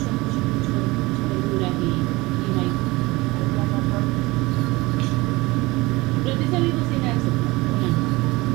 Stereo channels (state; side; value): quieter; left; 21.8 dB